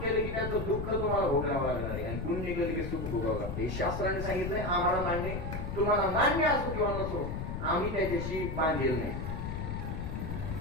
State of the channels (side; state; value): left; noise; rumble, 4 dB below the sound